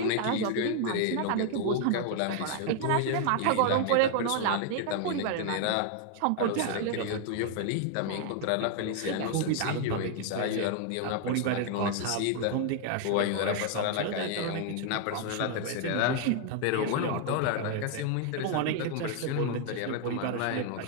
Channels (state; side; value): different; both; correlation 0.00